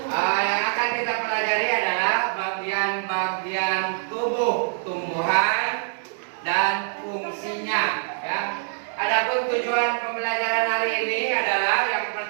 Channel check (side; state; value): left; silent; digital silence